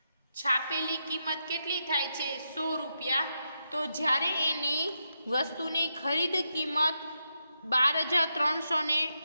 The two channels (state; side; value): inverted; both; correlation -0.84